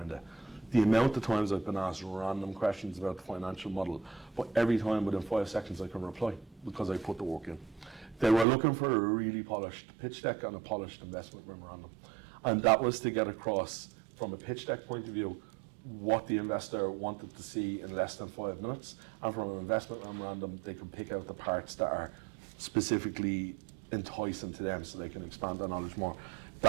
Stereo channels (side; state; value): left; drops out; at 8.5 s